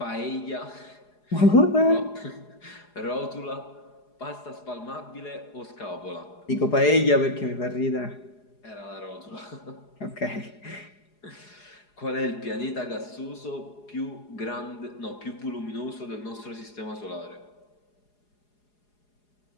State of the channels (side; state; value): right; late; 4.8 ms